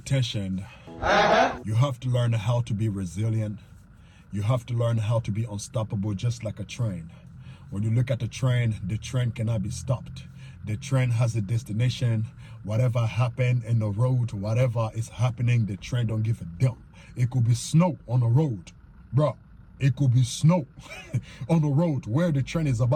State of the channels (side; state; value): both; identical; correlation 1.00